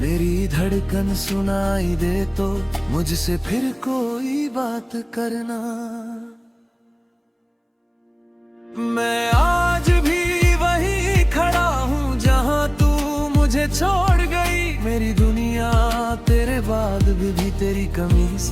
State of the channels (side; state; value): both; identical; correlation 1.00